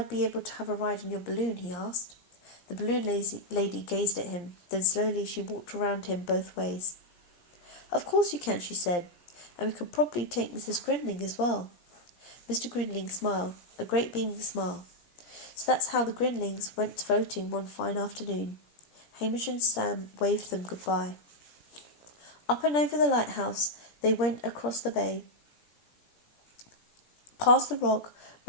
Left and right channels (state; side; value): late; right; 17 ms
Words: be able to have a ride in your balloon?" he asked. The balloon lady gazed at him. Then slowly she walked around him both ways. "Of course you can," she said, "and we could probably take Mrs. Grinling as well." Mr. Grinling smiled, a great beaming smile. So that's how the Grinlings went floating one fine afternoon. Hamish and Sam waved them goodbye. Up and over the lighthouse they went across the bay, past the rock